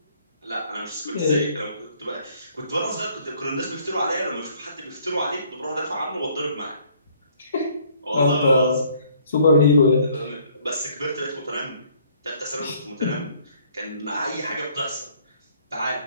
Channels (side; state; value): both; inverted; correlation -0.61